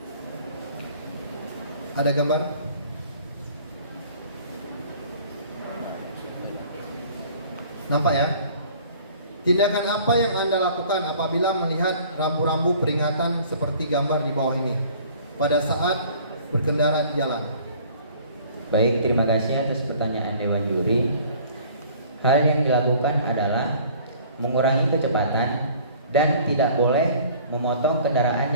Ada gambar? Nampak ya? Tindakan apa yang Anda lakukan apabila melihat rambu-rambu peringatan seperti gambar di bawah ini pada saat berkendara di jalan? Baik, terima kasih atas pertanyaan Dewan Juri. Hal yang dilakukan adalah mengurangi kecepatan dan tidak boleh memotong kendaraan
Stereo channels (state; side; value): inverted; both; correlation -0.52